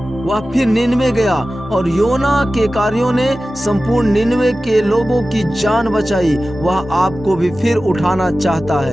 नीनवे गया और योना के कार्यों ने संपूर्ण नीनवे के लोगों की जान बचाई। वह आपको भी फिर उठाना चाहता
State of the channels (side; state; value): both; normal; correlation 0.95